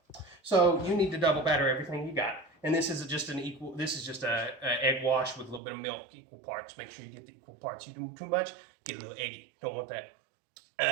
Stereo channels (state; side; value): drops out; left; at 5.6 s